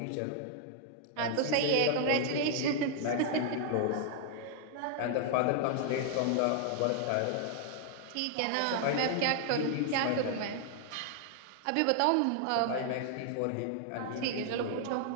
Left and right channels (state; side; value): different; both; correlation 0.00